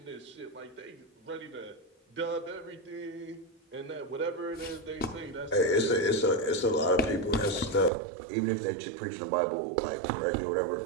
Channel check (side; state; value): left; drops out; at 7.9 s